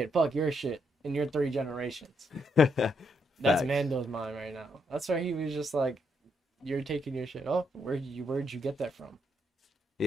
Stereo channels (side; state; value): both; normal; correlation 0.77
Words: Fuck your shit in your 3 generations. That's Mando's mind right now. That's why he was just like, you're taking your shit. Oh, where'd you get that from?